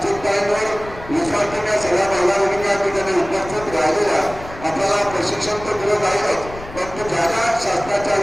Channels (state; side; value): noise; left; rumble, 15 dB below the sound